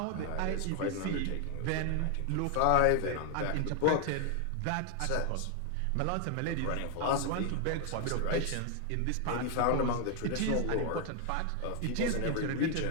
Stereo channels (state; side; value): different; both; correlation 0.00